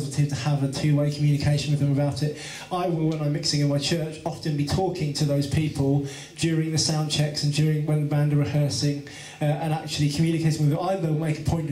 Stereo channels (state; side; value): identical; both; correlation 1.00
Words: to have a two-way communication with them about it. I will, when I'm mixing in my church, often be talking to those people during the sound checks and during when the band are rehearsing, and actually communicating with them. I will make a point